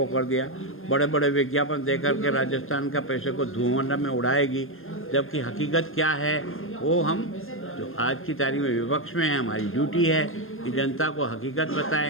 कर दिया, बड़े बड़े विज्ञापन दे करके राजस्थान का पैसे को धुआं में उड़ाएगी। जबकि हकीकत क्या है वो हम जो आज की तारीख में विपक्ष में है, हमारी ड्यूटी है कि जनता को हकीकत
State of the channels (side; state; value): right; late; 0.60 ms